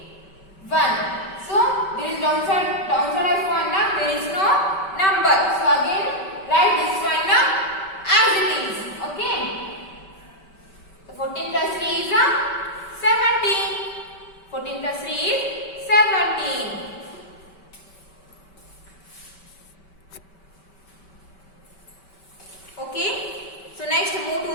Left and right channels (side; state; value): right; late; 5.2 ms